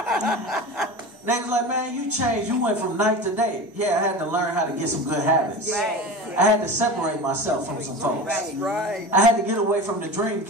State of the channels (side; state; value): both; normal; correlation 0.30